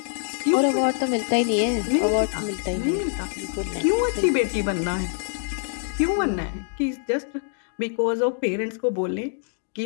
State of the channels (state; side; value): silent; right; 58 dB below the other